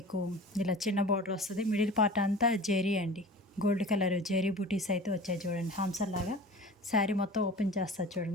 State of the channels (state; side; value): normal; both; correlation 0.38